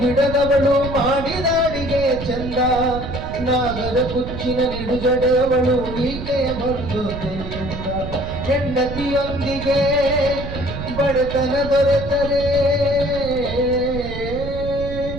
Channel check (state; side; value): noise; right; rumble, 8 dB below the sound